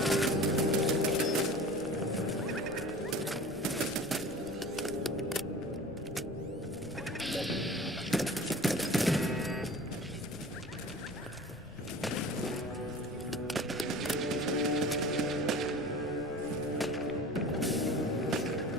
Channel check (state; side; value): noise; left; rumble, 19 dB below the sound